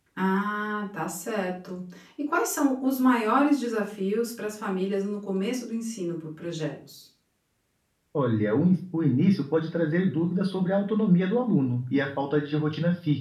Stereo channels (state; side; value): identical; both; correlation 1.00